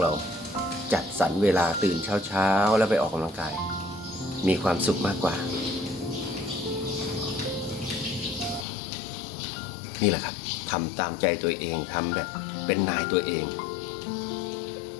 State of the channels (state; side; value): drops out; right; at 8.7 s